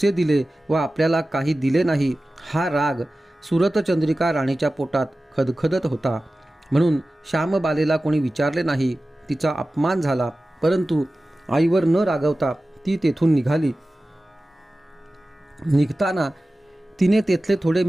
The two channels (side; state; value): both; normal; correlation 0.96